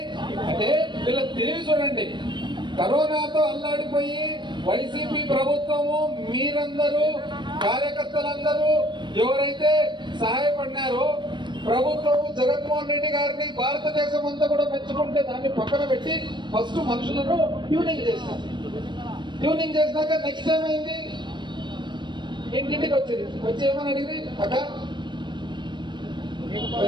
అంటే వీళ్ళ తెలివి చూడండి. కరోనాతో అల్లాడిపోయి వైసీపీ ప్రభుత్వము, మీరందరూ కార్యకర్తలందరూ ఎవరైతే సహాయపడినారో ప్రభుత్వము జగన్మోహన్ రెడ్డి గారిని భారతదేశం అంతా కూడా మెచ్చుకుంటే దాన్ని పక్కన పెట్టి ఫస్ట్ మనుషులను ట్యూనింగ్ చేశారు. ట్యూనింగ్ చేసినాక నెక్స్ట్ ఏమైంది? ఇంటింటికి వచ్చేది. వచ్చి ఏమని అడిగి అక్క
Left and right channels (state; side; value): late; left; 0.22 ms